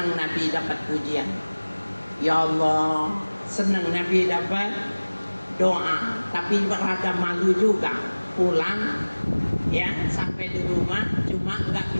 Nabi dapat pujian, ya Allah, senang Nabi dapat doa, tapi berada malu juga pulang ya sampai di rumah cuma nggak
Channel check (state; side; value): inverted; both; correlation -1.00